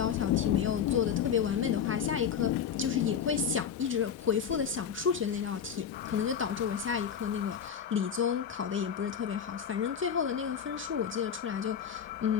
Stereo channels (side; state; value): right; quieter; 7.8 dB